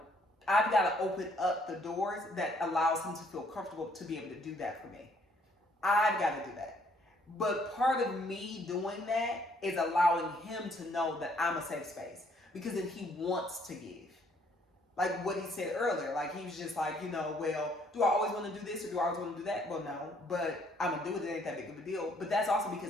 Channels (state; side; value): normal; both; correlation 0.65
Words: to open up the doors that allows him to feel comfortable to be able to do that for me. I've got to do that. But part of me doing that is allowing him to know that I'm a safe space, because then he wants to give. Like what he said earlier, like he was just like, well, do I always want to do this or do I always want to do that? Well, no, but I'm going to do it. It ain't that big of a deal. But that's also